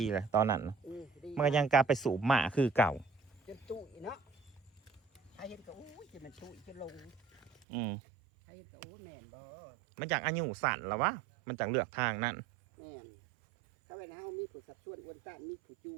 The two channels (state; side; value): drops out; left; at 7.7 s